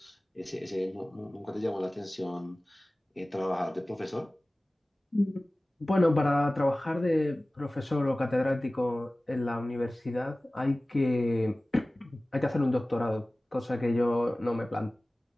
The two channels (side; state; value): both; normal; correlation 0.98